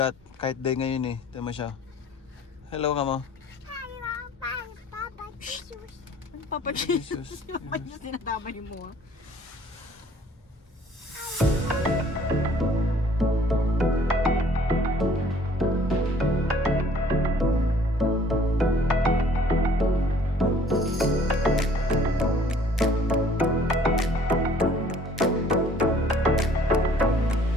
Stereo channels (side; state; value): both; normal; correlation 0.56